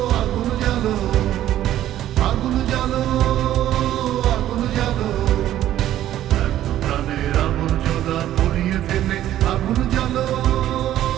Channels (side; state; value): left; quieter; 12.7 dB